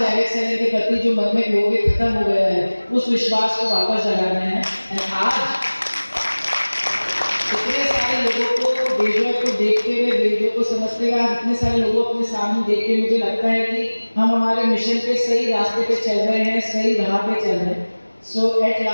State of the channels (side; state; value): both; inverted; correlation -1.00